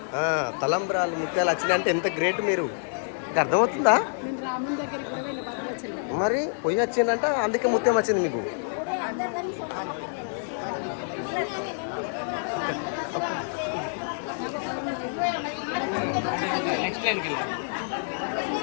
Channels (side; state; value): right; silent; digital silence